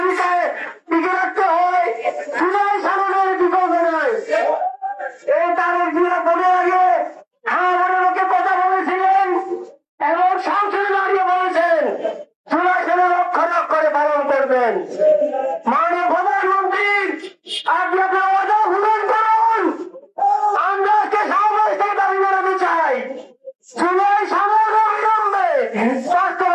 টিকে রাখতে হয়, জুলাই সামনের বিকল্প নয়। এই তারেক জিয়া বলে আগে আমাদের লোকে কথা বলেছিলেন এবং সংসদে দাঁড়িয়ে বলেছেন জুলাই সামনে রক্ষণাক করে পালন করবেন। মাননীয় প্রধানমন্ত্রী, আপনি আপনার ওয়াদা পূরণ করুন। আমরা আজকে সমাবেশ থেকে দাবি জানাতে চাই, জুলাই সামনে অবিলম্বে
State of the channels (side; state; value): both; identical; correlation 1.00